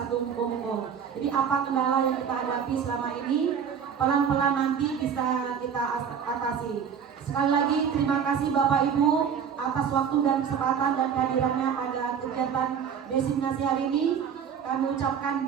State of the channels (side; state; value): left; quieter; 7.5 dB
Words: Monggo-Monggo. Jadi apa kendala yang kita hadapi selama ini, pelan-pelan nanti bisa kita atasi. Sekali lagi terima kasih Bapak Ibu atas waktu dan kesempatan dan kehadirannya pada kegiatan diseminasi hari ini. Kami ucapkan